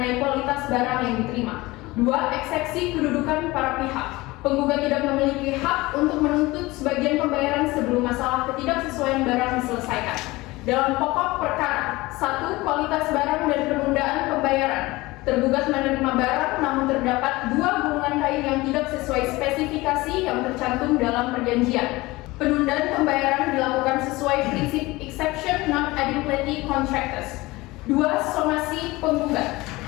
kualitas barang yang diterima. 2. Eksepsi kedudukan para pihak. Penggugat tidak memiliki hak untuk menuntut sebagian pembayaran sebelum masalah ketidaksesuaian barang diselesaikan. Dalam pokok perkara, 1. Kualitas barang dan penundaan pembayaran. Tergugat menerima barang namun terdapat 2 gulungan kain yang tidak sesuai spesifikasi yang tercantum dalam perjanjian. Penundaan pembayaran dilakukan sesuai prinsip exception non adequacy contractus. 2. Somasi penggugat.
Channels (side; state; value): right; quieter; 20.8 dB